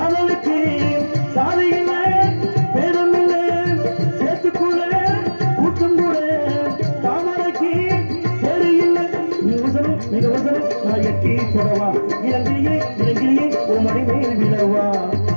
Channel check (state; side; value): inverted; both; correlation -1.00